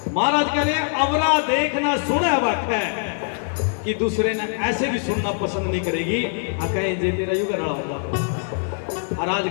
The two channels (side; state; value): right; silent; digital silence